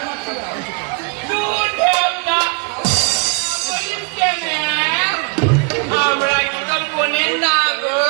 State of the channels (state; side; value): quieter; left; 32.0 dB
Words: আমরা কি তোর বোনের না গো